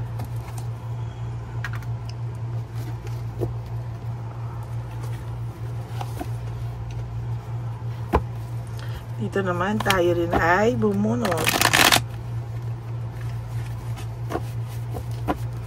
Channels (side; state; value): both; identical; correlation 1.00